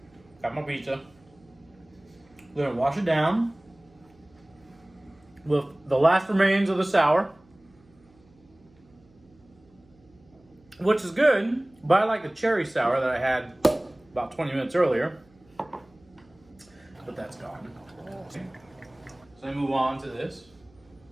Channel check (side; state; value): right; noise; hum, 30 dB below the sound